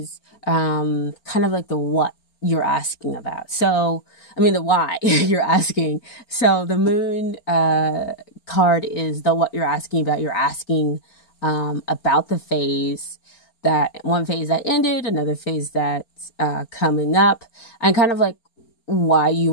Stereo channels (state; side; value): late; right; 4.4 ms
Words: kind of like the what you're asking about. So, I mean, the why you're asking. So the moon card is the what you're asking about. You're asking about the phase one phase that ended, another phase that's coming up, and kind of like why you